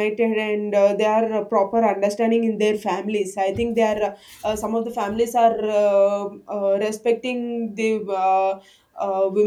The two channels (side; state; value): both; identical; correlation 1.00